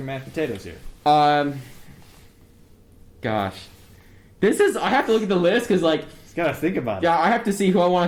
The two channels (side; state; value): both; identical; correlation 1.00